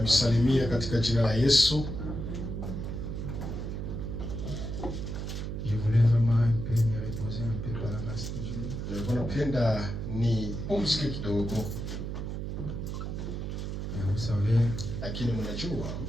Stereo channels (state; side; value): noise; right; hum, 4 dB below the sound